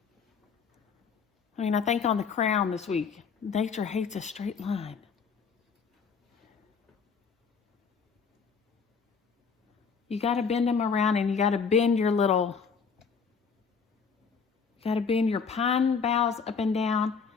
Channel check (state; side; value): quieter; right; 5.8 dB